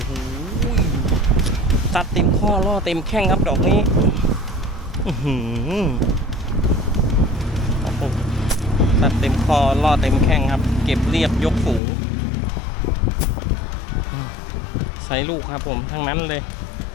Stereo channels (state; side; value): drops out; right; at 11.8 s